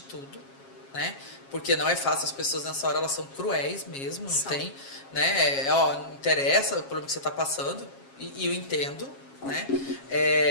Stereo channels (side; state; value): right; late; 7.4 ms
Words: tudo. Né? Porque não é fácil, as pessoas nessa hora elas são cruéis mesmo, não tem, né? Não interessa o problema que você está passando, e eu entendo, né?